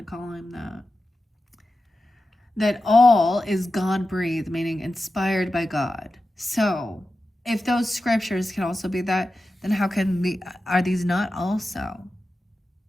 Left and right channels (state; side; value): normal; both; correlation 0.92